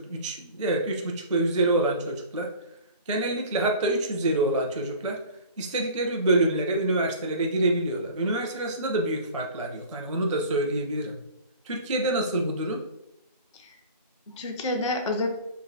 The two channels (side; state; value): both; inverted; correlation -0.42